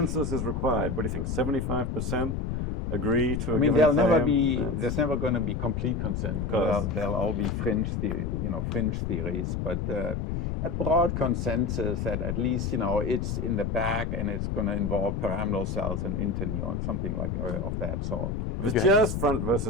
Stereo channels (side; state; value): left; noise; rumble, 2 dB below the sound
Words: is required? What do you think? 75% agree to a given claim? There's never going to be complete consensus. There'll all be fringe theories, but a broad consensus that at least it's in the back and it's going to involve pyramidal cells and interneurons, something like of that sort. If it's just front